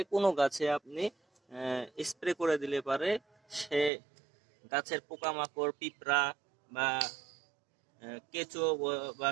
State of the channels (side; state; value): left; drops out; at 3.9 s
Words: কোনো গাছে আপনি স্প্রে করে দিলে পারে সে গাছের পোকামাকড়, পিঁপড়া বা কেঁচো বা